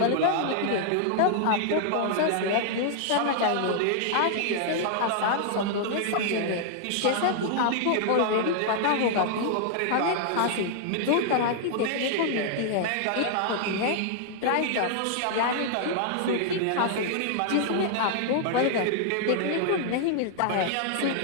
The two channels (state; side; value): different; both; correlation -0.01